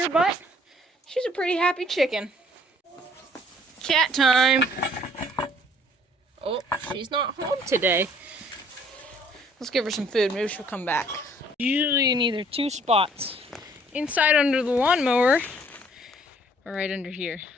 but she's a pretty happy chicken. Cat time. Oh, she's not home today. Let's give her some food. Maybe she'll come back. Usually in either two spots. Inside under the lawnmower, or right under here.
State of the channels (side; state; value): both; normal; correlation 0.59